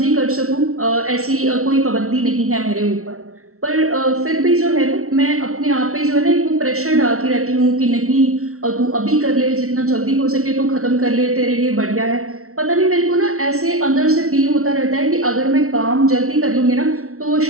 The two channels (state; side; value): late; left; 0.63 ms